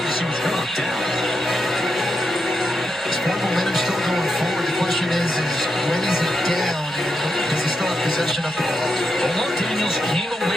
he was really down. Sport momentum still going forward. The question is when is he down? Does he still have possession of the ball? Omar Daniels came away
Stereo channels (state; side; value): normal; both; correlation 0.85